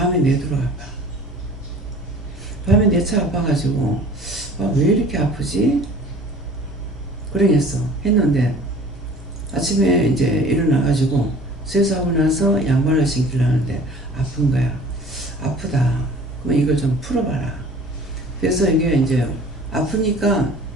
내도록 아파. 밤에 내차 아파가지고 왜 이렇게 아프지? 그러겠어. 했는데 아침에 이제 일어나가지고 세수하고 나서 양말을 신기려 하는데 아픈 거야. 아프다. 그럼 이걸 좀 풀어봐라. 그래서 이게 이제 아프니까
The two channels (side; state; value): both; normal; correlation 0.47